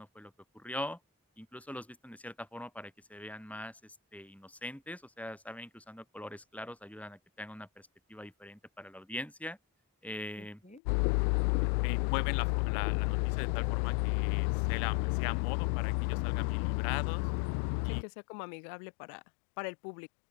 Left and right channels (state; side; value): drops out; right; at 10.8 s